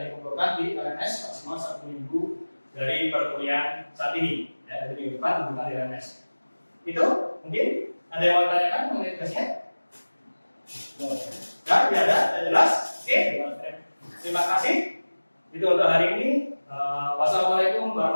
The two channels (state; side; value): inverted; both; correlation -1.00